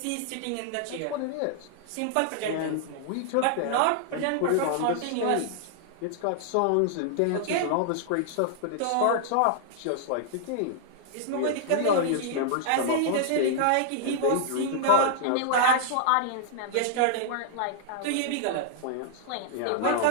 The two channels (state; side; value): different; both; correlation -0.01